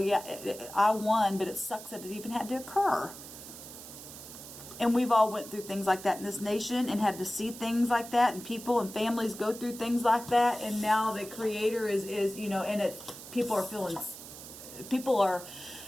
I won, but it sucks that it even had to occur. And we've all went through things like that in this nation and had to see things like that, and people and families go through things like that, and now the Creator is and it's,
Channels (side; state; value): right; noise; hiss, 14 dB below the sound